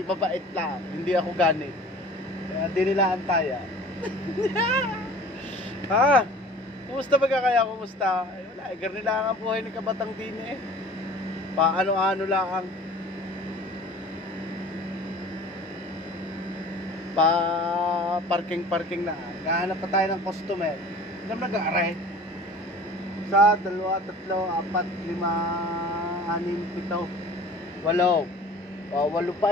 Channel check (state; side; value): normal; both; correlation 0.44